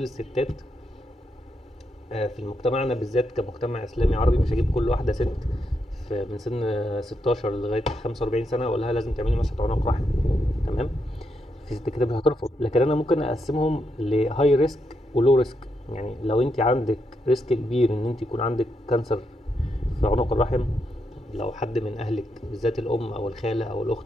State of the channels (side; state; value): both; normal; correlation 0.82